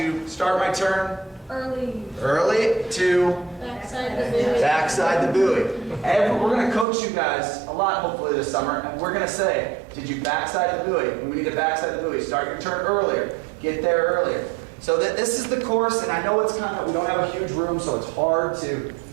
start my turn early to Backside the buoy. backside the buoy. And we're going to coach you guys a lot, hopefully, this summer, and we're going to say, did you backside the buoy? We need to backside the buoy. Start your turn earlier. Get there earlier. So this is the course, and I know it's we don't have a huge room, so it's hard to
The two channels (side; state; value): left; drops out; at 6.9 s